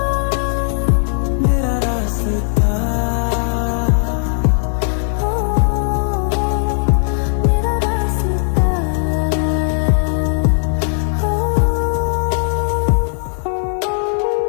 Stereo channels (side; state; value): right; silent; digital silence